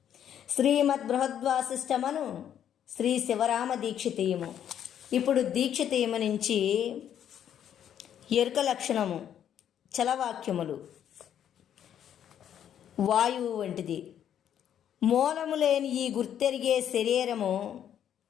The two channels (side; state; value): right; quieter; 9.7 dB